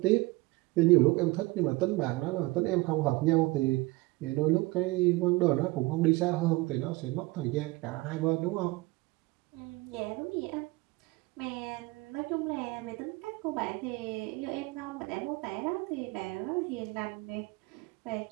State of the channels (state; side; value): quieter; left; 22.1 dB